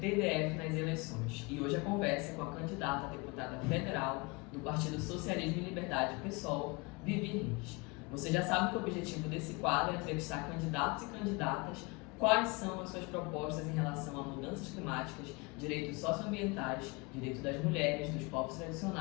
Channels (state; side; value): quieter; right; 27.5 dB